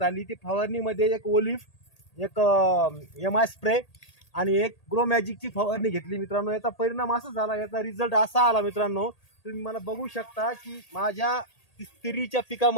आली. ती फवारणीमध्ये एक ओलिफ, एक MI स्प्रे आणि एक ग्रो मॅजिकची फवारणी घेतली मित्रांनो. याचा परिणाम असा झाला, याचा रिझल्ट असा आला मित्रांनो, तुम्ही मला बघू शकता की माझ्या तिरीच्या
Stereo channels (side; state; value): right; late; 1.8 ms